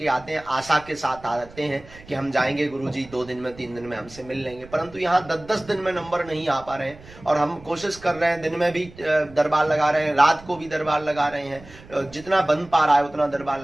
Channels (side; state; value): right; noise; rumble, 21 dB below the sound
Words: आते हैं, आशा के साथ आते हैं कि हम जाएंगे गुरुजी 2 दिन में 3 दिन में हमसे मिल लेंगे। परंतु यहाँ 10-10 दिन में नंबर नहीं आ पा रहे हैं और हम कोशिश कर रहे हैं, दिन में भी दरबार लगा रहे हैं, रात को भी दरबार लगा रहे हैं, जितना बन पा रहा है उतना दरबार